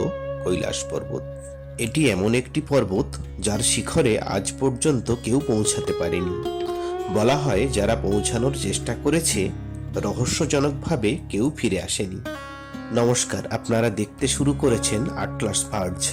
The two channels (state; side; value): identical; both; correlation 1.00